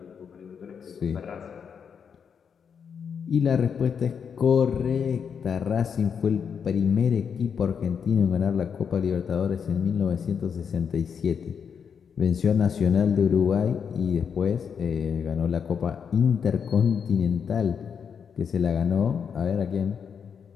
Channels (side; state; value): right; quieter; 6.9 dB